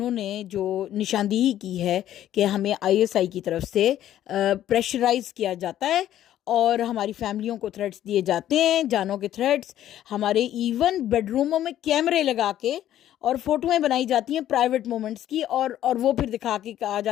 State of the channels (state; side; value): quieter; right; 12.0 dB